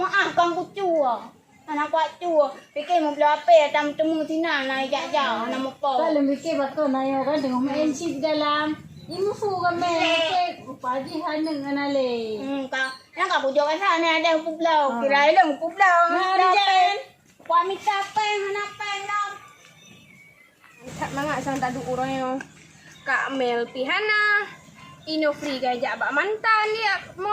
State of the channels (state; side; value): identical; both; correlation 1.00